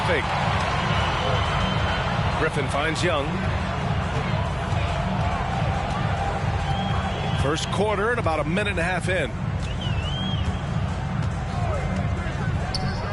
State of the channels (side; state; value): both; identical; correlation 1.00